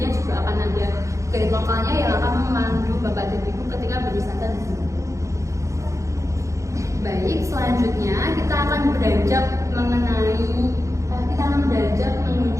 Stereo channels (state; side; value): late; left; 0.15 ms